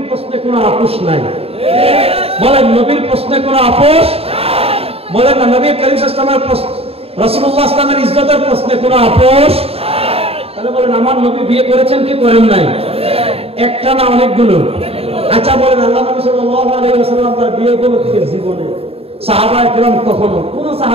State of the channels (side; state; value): left; late; 0.28 ms